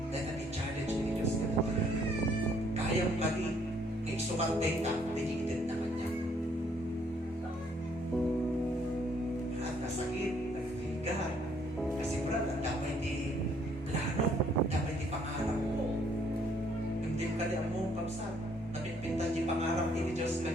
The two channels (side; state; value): both; normal; correlation 0.66